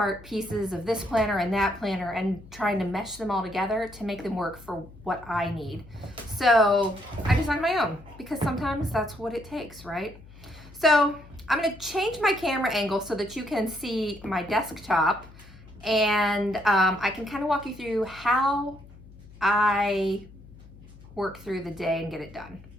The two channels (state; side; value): noise; left; hum, 20 dB below the sound